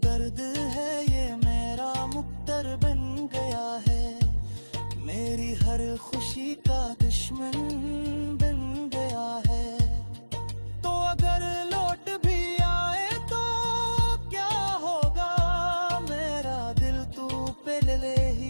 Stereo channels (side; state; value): both; inverted; correlation -1.00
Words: है ये मेरा मुक्तर बन गया है, मेरी हर खुशी का दुश्मन बन गया है। तो अगर लौट भी आए तो क्या होगा, मेरा दिल तू पहले